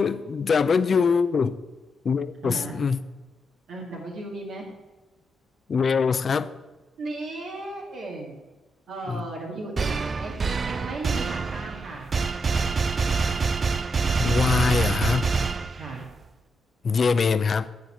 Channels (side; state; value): both; normal; correlation 0.83